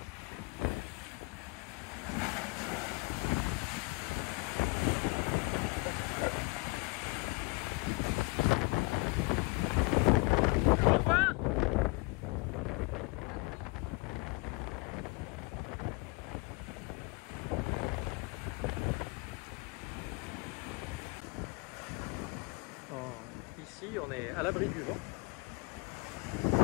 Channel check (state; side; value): quieter; right; 27.0 dB